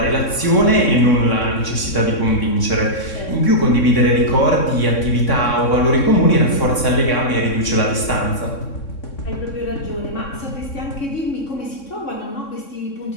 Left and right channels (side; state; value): right; late; 3.6 ms